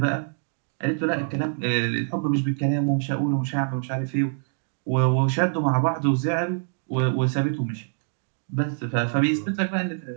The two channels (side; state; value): left; silent; digital silence